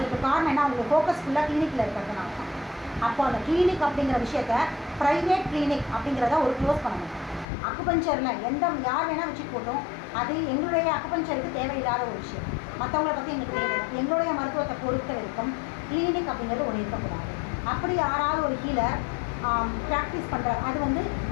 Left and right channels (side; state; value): right; drops out; at 7.5 s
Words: காரணம் என்ன, அவங்க ஃபோக்கஸ் ஃபுல்லாக கிளினிக்கில் இருக்கிறதுனால தான். அப்போ அந்த கிளினிக் அப்படிங்கிற விஷயத்த ப்ரைவேட் கிளினிக் அப்படிங்கிறத ஒரு க்ளோஸ் பண்ணணும். அக்குபஞ்சரில் யார் வேணால் வச்சுட்டு போட்டோம், அது எங்களுடைய அக்குபஞ்சருக்கு தேவையில்லாத ஒரு விஷயம். மற்றவங்களை பற்றி எங்களுக்கு தேவையில்லை. எங்களுடைய மருத்துவத்தை பொறுத்த வரைக்கும் கிளினிக் அப்படிங்கிறது ஒன்று இருக்கக்கூடாது. அப்படி யாராவது ஒரு ஹீலர் ப்ராக்டிஸ் பண்ணுறாரு, அது வந்து